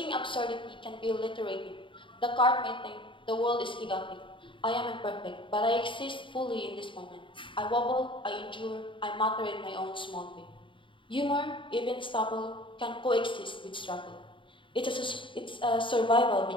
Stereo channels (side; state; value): right; late; 0.24 ms